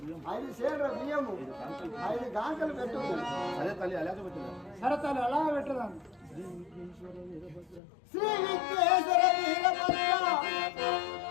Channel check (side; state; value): right; drops out; at 7.8 s